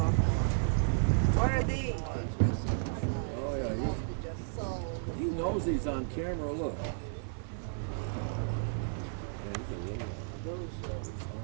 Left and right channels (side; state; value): left; silent; 56 dB below the other